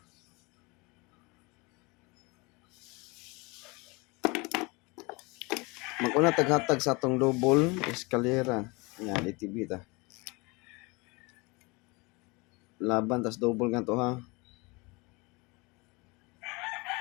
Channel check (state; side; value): quieter; right; 26.7 dB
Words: Mag-una taghatag sa atong double eskalera. Yan, DTB ta. Laban tas double nga to ha.